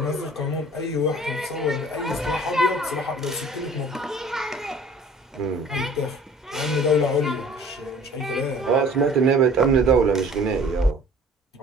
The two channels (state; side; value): normal; both; correlation 0.49